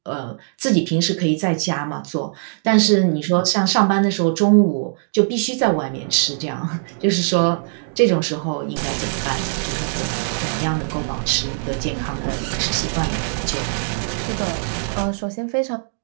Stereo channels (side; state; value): left; silent; digital silence